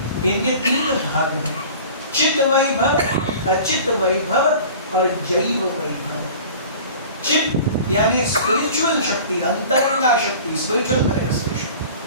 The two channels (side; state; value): both; inverted; correlation -0.42